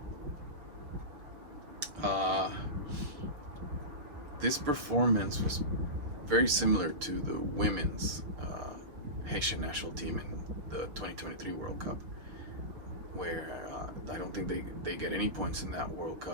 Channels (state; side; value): late; left; 6.6 ms